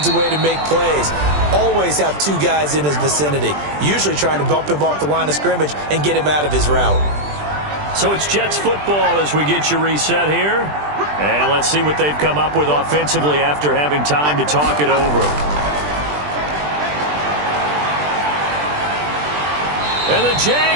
a way to make plays. Always have 2 guys in his vicinity, usually trying to bump him off the line of scrimmage and get him out of his route. So it's Jets football as we get you reset here. And let's see what they've come up with offensively after having time to talk it over. And the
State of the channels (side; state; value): left; late; 20 ms